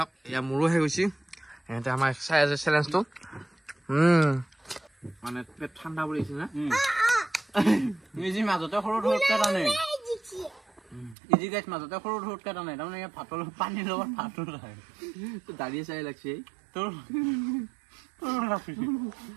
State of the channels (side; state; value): left; drops out; at 11.2 s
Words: এয়া মোৰো হৈ গৈছে সিহঁতে আমাৰ চাই আছে চেলেঞ্জটো মানে পেট ঠাণ্ডা পৰি আছে না ইজি মাজতে সৰু ধৰকে টানে ইজি গাইছ মাজতে সৰু ধৰকে টানে তাৰমানে ভাতৰ পানীৰ লগত ভাতো খায় তো দাঁড়িয়ে চাই লাগছে তোৰ